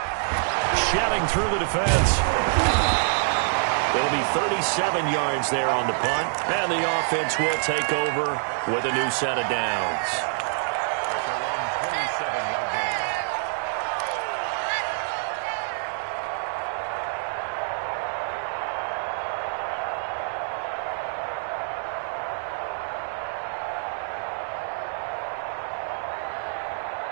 Shedding through the defense. It'll be 37 yards there on the punt, and the offense will take over with a new set of downs.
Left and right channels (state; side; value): silent; left; 61 dB below the other